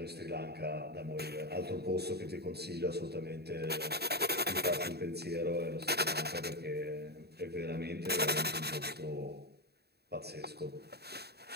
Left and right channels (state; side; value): late; left; 0.47 ms